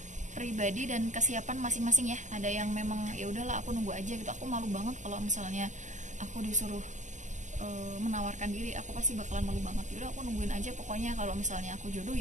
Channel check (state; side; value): late; left; 0.35 ms